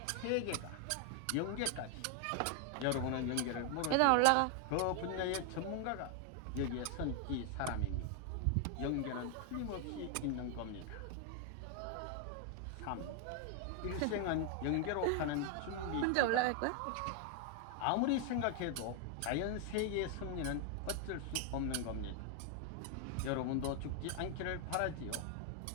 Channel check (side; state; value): both; different; correlation 0.00